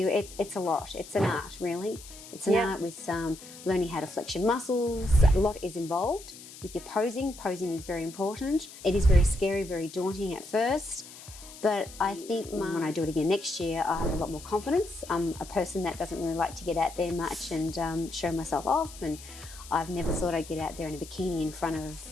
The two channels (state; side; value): noise; left; hiss, 16 dB below the sound